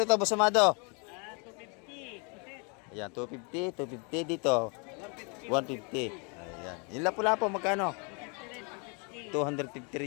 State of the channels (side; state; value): right; quieter; 34.4 dB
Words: Boss Amado? 250. Ayan, 250 dito. 150. Ayan. Yung lapu-lapo, magkano? 250